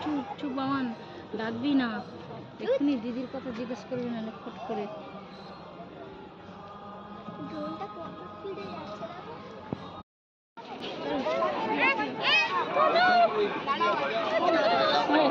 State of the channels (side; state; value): both; identical; correlation 1.00